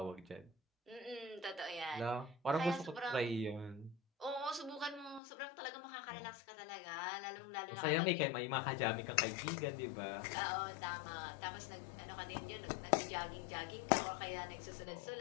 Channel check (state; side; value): drops out; right; at 5.2 s